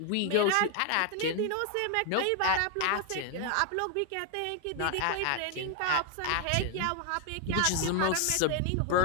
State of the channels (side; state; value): both; different; correlation 0.01